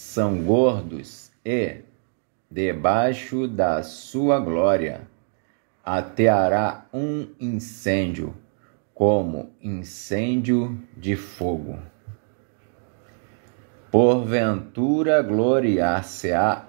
gordos, e, debaixo da sua glória, ateará um incêndio, como incêndio de fogo. Porventura gloriar-se-á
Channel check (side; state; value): left; silent; 56 dB below the other